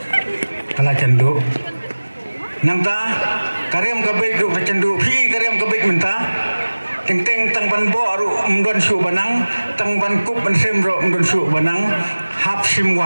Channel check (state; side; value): inverted; both; correlation -1.00